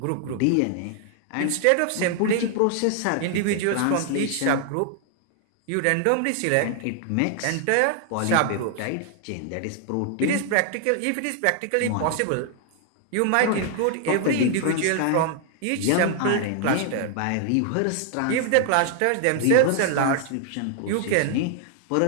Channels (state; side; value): different; both; correlation 0.00